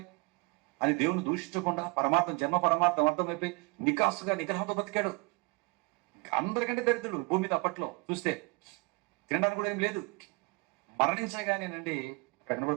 అని దేవుని దూషించకుండా జన్మ పరమార్థం అర్థమైపోయి నిగ్రహంతో బతికాడు. అందరికంటే దరిద్రుడు భూమి మీద అప్పట్లో చూస్తే. తినడానికి కూడా ఏం లేదు. మరణించగానేనండి అక్కడ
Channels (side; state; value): left; quieter; 26.4 dB